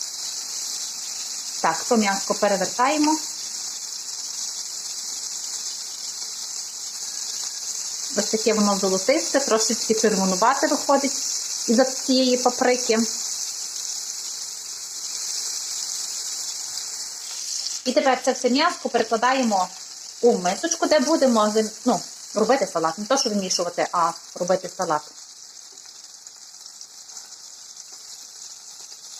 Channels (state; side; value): identical; both; correlation 1.00